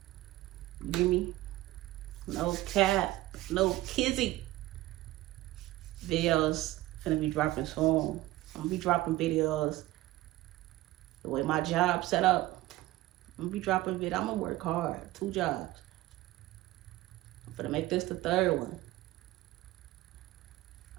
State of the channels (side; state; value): left; quieter; 17.1 dB